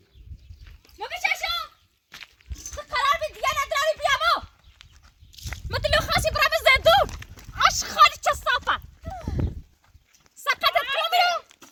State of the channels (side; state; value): both; identical; correlation 1.00